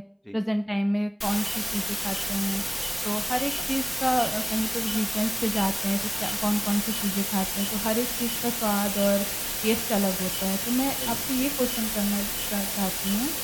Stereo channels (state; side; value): identical; both; correlation 1.00